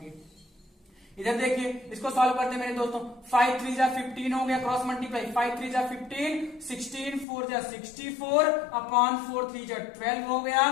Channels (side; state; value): right; drops out; at 7.2 s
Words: इधर देखिए इसको सॉल्व करते हैं मेरे दोस्तों। 5 3 जा 15 हो गया, क्रॉस मल्टीप्लाई, 5 3 जा 15, 16 4 जा 64 अपॉन 4 3 जा 12 हो गया,